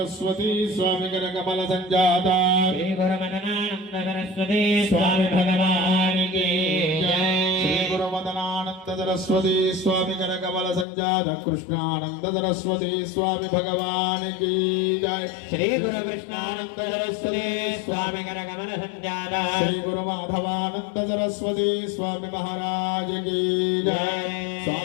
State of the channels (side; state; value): right; drops out; at 10.9 s